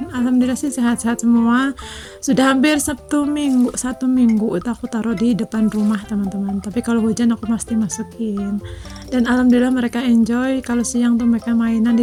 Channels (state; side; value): identical; both; correlation 1.00